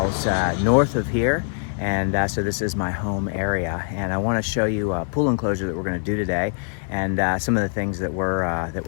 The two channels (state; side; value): silent; right; 56 dB below the other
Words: north of here, and so this is my home area. And I want to show you a pool enclosure that we're going to do today, and some of the things that